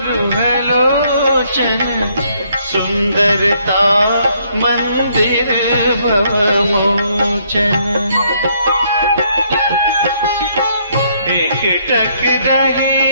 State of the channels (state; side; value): inverted; both; correlation -0.69